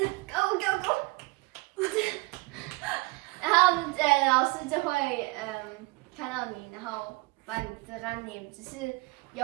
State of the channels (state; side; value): quieter; left; 25.4 dB